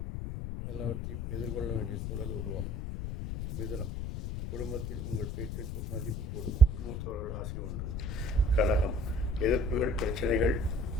எல்லாவற்றையும் எதிர்கொள்ள வேண்டிய சூழல் உருவாகும். மிதுனம், குடும்பத்தில் உங்கள் பேச்சுக்கு மதிப்பு கூடும். மூத்தவர்கள் ஆசை உண்டு. கடகம், எதிர்ப்புகள், பிரச்சனைகள்,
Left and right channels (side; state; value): left; noise; rumble, 4 dB below the sound